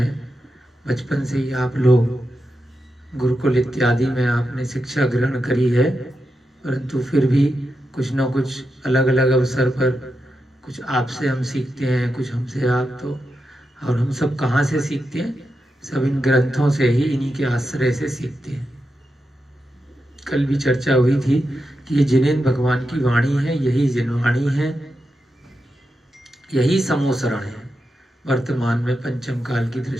बचपन से ही आप लोग गुरुकुल इत्यादि में आपने शिक्षा ग्रहण करी है, परंतु फिर भी कुछ न कुछ अलग अलग अवसर पर कुछ आपसे हम सीखते हैं, कुछ हमसे आप। तो और हम सब कहाँ से सीखते हैं? सब इन ग्रंथों से ही, इन्हीं के आश्रय से सीखते हैं। कल भी चर्चा हुई थी कि ये जिनेन्द्र भगवान की वाणी है, यही जिनवाणी है, यही समोसरण है। वर्तमान में पंचम काल की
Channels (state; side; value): normal; both; correlation 0.88